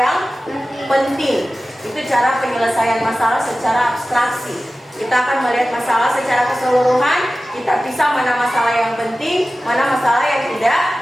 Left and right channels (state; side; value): normal; both; correlation 0.95